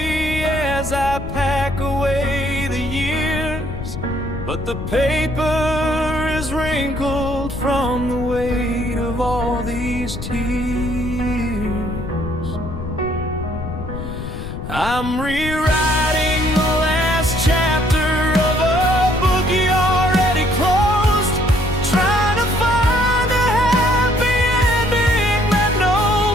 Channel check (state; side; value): noise; left; rumble, 8 dB below the sound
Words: as I pack away the years, but the paper is wrinkled from the weight of all these tears. I'm rewriting the last chapter of a book you already closed, trying to find a happy ending that